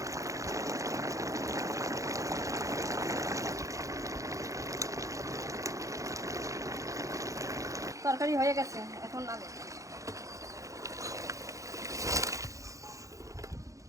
তরকারি হয়ে গেছে, এখন নামে।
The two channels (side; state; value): left; late; 0.16 ms